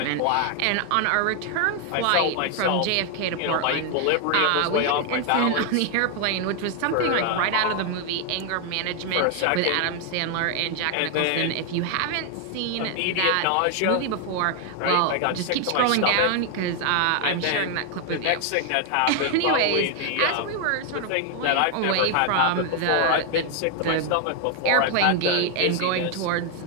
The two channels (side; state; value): both; different; correlation 0.00